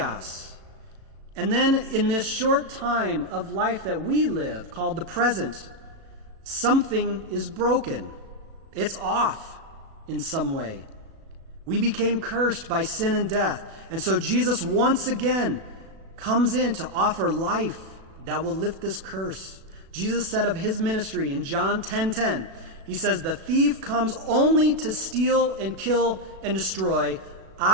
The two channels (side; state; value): left; late; 36 ms